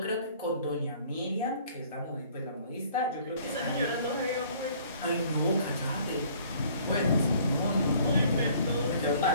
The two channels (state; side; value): inverted; both; correlation -0.55